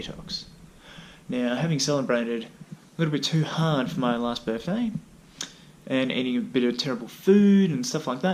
Now, having celebrated a little bit too hard for my last birthday, and eating a bit of terrible food and stuff like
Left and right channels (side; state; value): both; identical; correlation 1.00